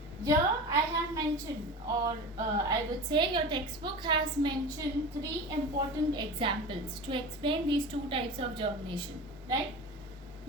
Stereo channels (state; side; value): normal; both; correlation 0.31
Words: Here I have mentioned, or I would say your textbook has mentioned 3 important examples to explain these two types of germination, right?